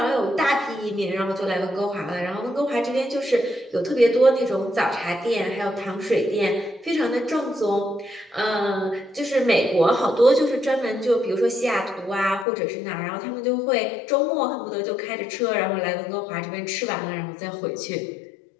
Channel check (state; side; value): drops out; right; at 12.5 s